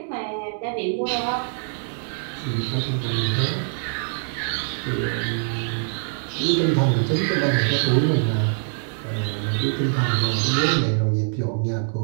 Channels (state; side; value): silent; left; 63 dB below the other